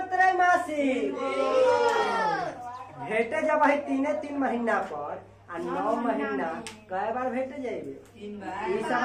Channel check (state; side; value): identical; both; correlation 1.00